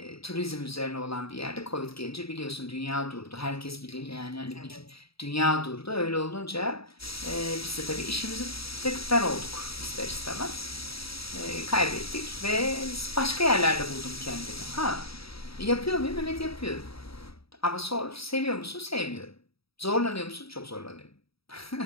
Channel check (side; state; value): right; late; 0.76 ms